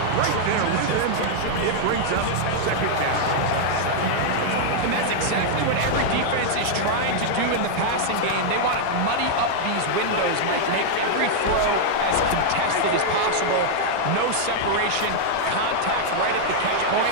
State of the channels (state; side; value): different; both; correlation -0.01